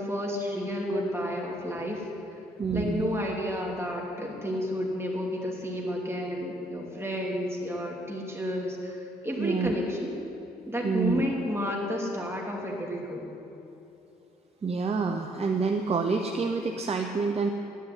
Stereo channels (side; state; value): both; normal; correlation 0.68